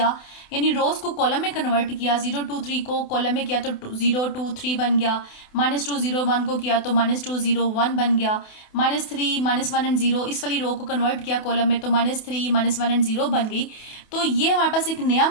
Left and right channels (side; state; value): right; late; 28 ms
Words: यानी रोज को कॉलम में कन्वर्ट किया, 0 2 3 को कॉलम में किया तो 0 2 3 बन गया, -2 0 1 को किया तो -2 0 1 बन गया, -3 -1 एंड 0 इस वाली रो को कन्वर्ट किया कॉलम में तो -3 -1 एंड 0 बन गई। तो ये हमारे पास एक नया